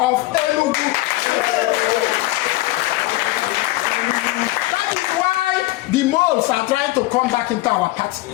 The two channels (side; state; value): right; quieter; 18.5 dB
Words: Enugu. That is why the moles are trying to come back into our party.